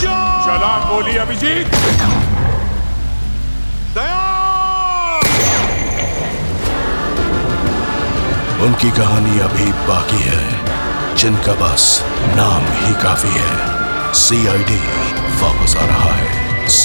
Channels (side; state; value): both; inverted; correlation -1.00